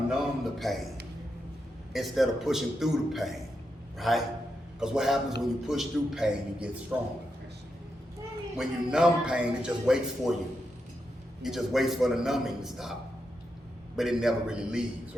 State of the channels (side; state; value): both; normal; correlation 0.85